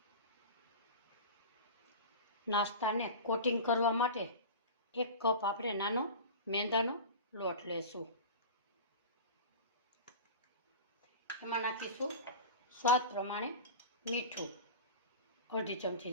નાસ્તાને કોટિંગ કરવા માટે 1 કપ આપણે નાનો મેંદાનો લોટ લેશું, એમાં નાખીશું સ્વાદ પ્રમાણે મીઠું, અડધી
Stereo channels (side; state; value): both; inverted; correlation -0.31